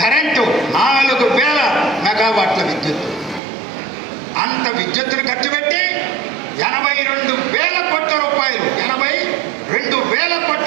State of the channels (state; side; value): drops out; left; at 3.4 s